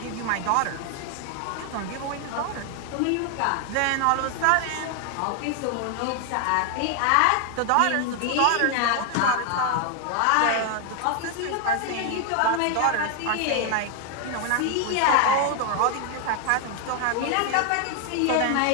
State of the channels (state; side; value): different; both; correlation 0.00